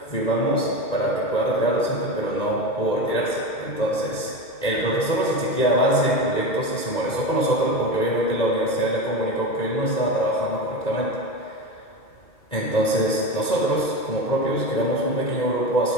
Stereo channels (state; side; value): late; right; 2.2 ms